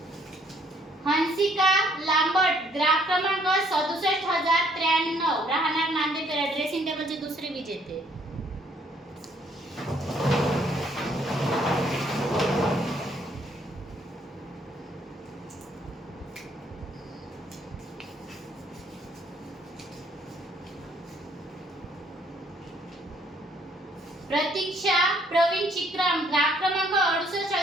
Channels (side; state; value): both; normal; correlation 0.65